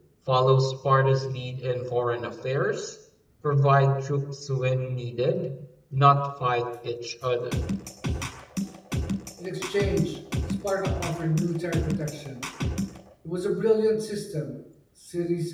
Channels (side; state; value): both; identical; correlation 1.00